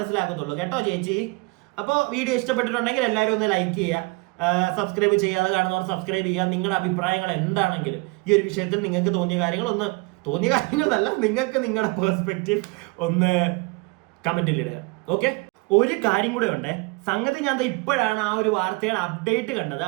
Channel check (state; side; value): quieter; left; 27.0 dB